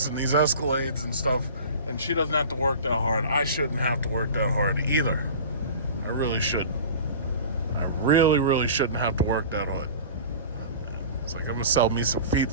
and these Escalades and stuff, and she doesn't have to work that hard, I shouldn't have to work that hard either. I really should. I really, really shouldn't have to work that hard. It's like I'm gonna sell me some feet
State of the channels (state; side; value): inverted; both; correlation -0.38